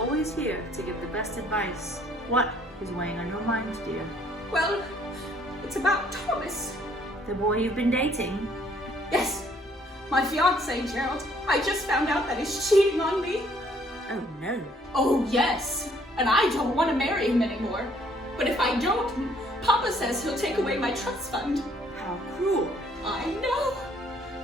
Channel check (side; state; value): both; normal; correlation 0.63